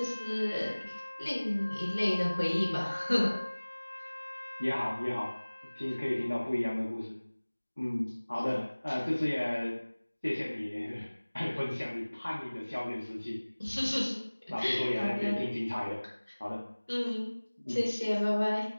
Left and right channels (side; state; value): both; inverted; correlation -1.00